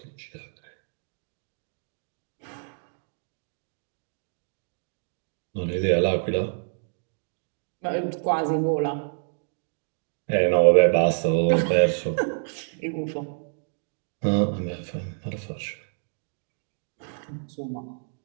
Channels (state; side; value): silent; left; digital silence